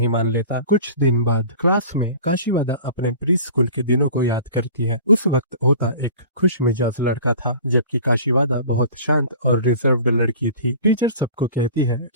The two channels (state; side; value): inverted; both; correlation -0.42